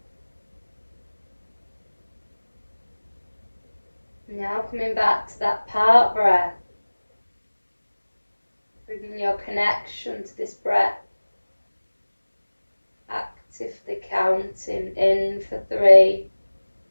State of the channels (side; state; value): both; inverted; correlation -1.00